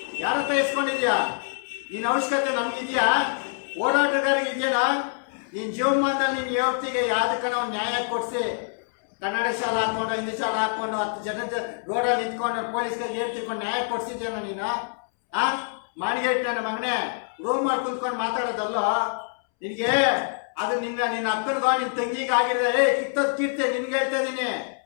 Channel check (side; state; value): right; silent; 61 dB below the other